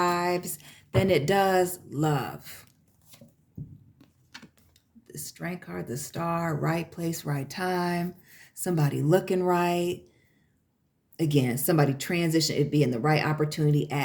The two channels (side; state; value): both; identical; correlation 1.00